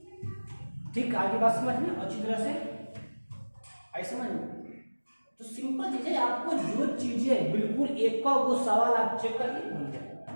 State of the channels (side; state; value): both; inverted; correlation -1.00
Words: ठीक, आगे बात समझ में अच्छी तरह से आई समझ में? तो सिंपल चीज है, आपको जो चीजें बिल्कुल एक का वो सवाल आप चेक करिए बन जाए।